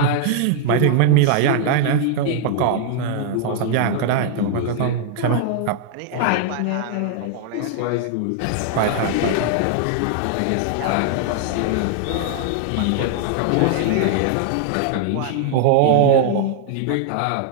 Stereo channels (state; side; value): different; both; correlation 0.00